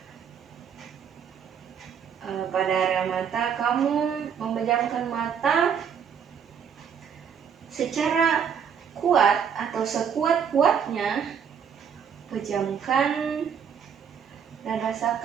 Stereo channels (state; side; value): quieter; left; 7.5 dB